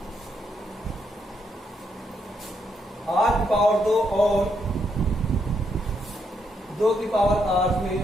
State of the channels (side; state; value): both; normal; correlation 0.77